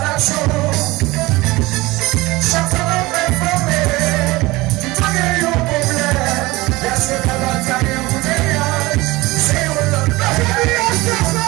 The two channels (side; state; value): left; quieter; 20.9 dB